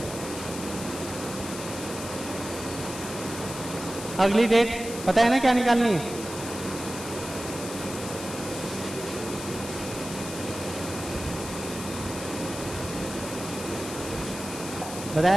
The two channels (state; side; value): noise; left; hiss, 10 dB below the sound